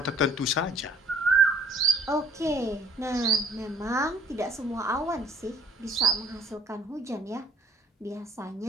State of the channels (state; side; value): normal; both; correlation 0.58